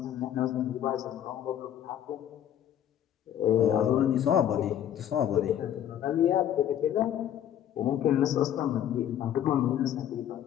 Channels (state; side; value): quieter; right; 10.5 dB